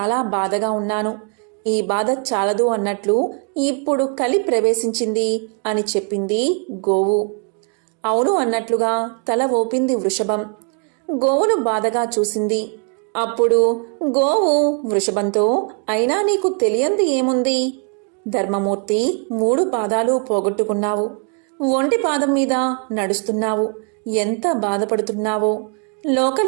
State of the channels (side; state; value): left; quieter; 39.0 dB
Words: బాధగా ఉన్నాను. ఈ బాధ చాలదు అన్నట్లు ఇప్పుడు కలి ప్రవేశించింది అని చెప్పింది గోవు. అవును అన్నట్లుగా తల ఊపింది వృషభం. గోవును బాధగా చూసింది. అప్పుడు గోవు వృషభంతో, అయినా నీకు తెలియంది ఏముంది? ధర్మమూర్తి 3 పాదాలు పోగొట్టుకున్నావు. ఒంటి పాదం మీద నడుస్తున్నావు. ఎంత బాధపడుతున్నావో.